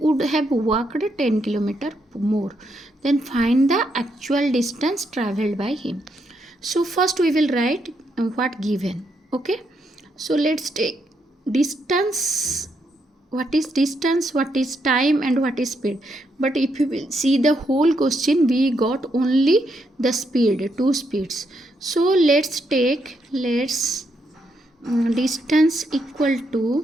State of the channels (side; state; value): both; normal; correlation 0.78